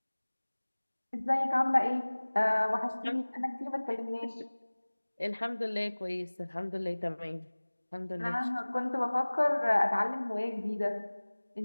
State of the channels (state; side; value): inverted; both; correlation -1.00